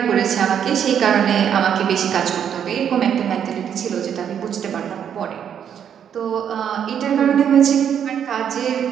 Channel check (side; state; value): left; quieter; 8.6 dB